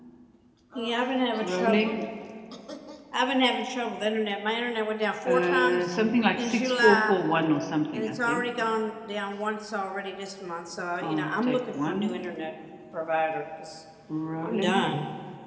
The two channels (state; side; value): identical; both; correlation 1.00